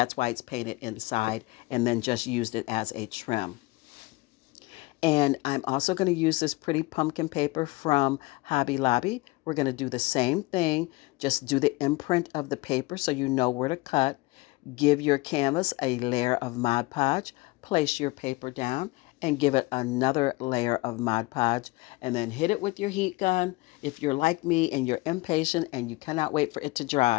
why it's painted inside, and then just used it as a trim. And I'm also going to use this pretty pumpkin paper from Hobby Lobby. We're going to do the same thing. Just do the imprint of the paper so you know where to cut. Give your canvas a layer of Mod Podge. Place your paper down and give it another layer of Mod Podge. And then hit it with your heat gun. If you're like me and you're impatient and you cannot wait for it to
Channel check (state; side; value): quieter; right; 22.3 dB